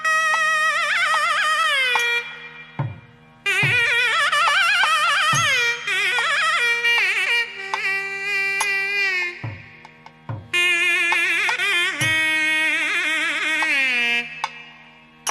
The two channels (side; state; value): both; identical; correlation 1.00